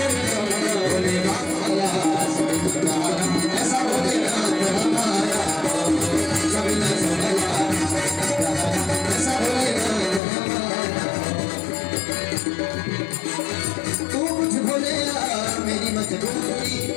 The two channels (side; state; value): right; drops out; at 10.2 s